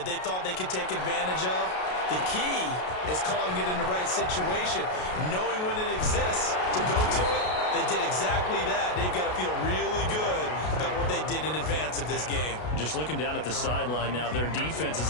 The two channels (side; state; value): right; late; 33 ms